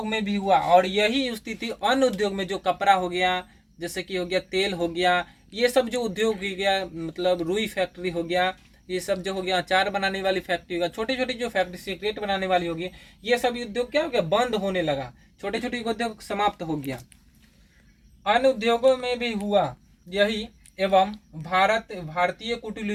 में भी हुआ, और यही स्थिति अन्य उद्योग में जो कपड़ा हो गया, जैसे कि हो गया तेल हो गया, ये सब जो उद्योग हो गया, मतलब रुई फैक्ट्री हो गया, ये सब जो हो गया अचार बनाने वाली फैक्ट्री होगा, छोटी छोटी जो फैक्ट्री सिगरेट बनाने वाली होगी, ये सब उद्योग क्या हो गया, बंद होने लगा, छोटे छोटे उद्योग समाप्त हो गया। अन्य उद्योगों में भी हुआ यही, एवं भारतीय कुटीर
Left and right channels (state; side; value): identical; both; correlation 1.00